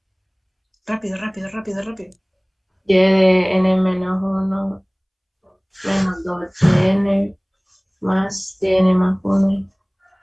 Rápido, rápido, rápido, rápido. Y de n menos 1 menos 2n más n más 1.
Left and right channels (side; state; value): both; identical; correlation 1.00